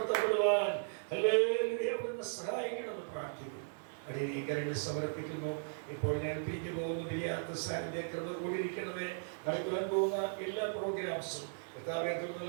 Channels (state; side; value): silent; left; digital silence